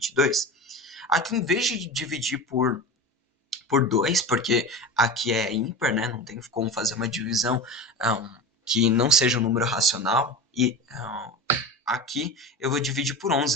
Aqui, em vez de dividir por 2, porque aqui é ímpar, né? Não tem como fazer uma divisão que não seja um número racional. E aqui eu vou dividir por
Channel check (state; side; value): normal; both; correlation 0.28